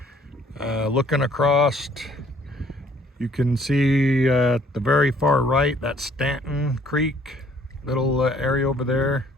Looking across, you can see at the very far right, that's Stanton Creek, little area over there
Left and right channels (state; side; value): normal; both; correlation 0.60